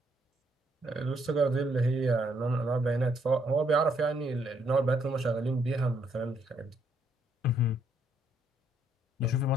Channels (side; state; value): both; normal; correlation 0.72